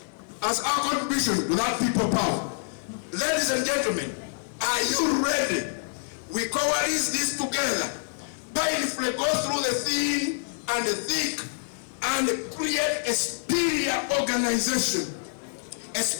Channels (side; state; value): right; silent; 60 dB below the other